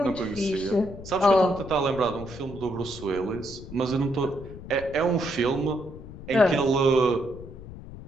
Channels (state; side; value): noise; left; rumble, 14 dB below the sound